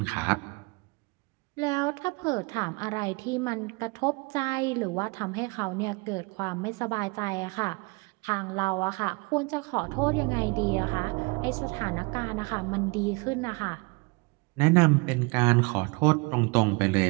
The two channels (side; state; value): left; quieter; 27.9 dB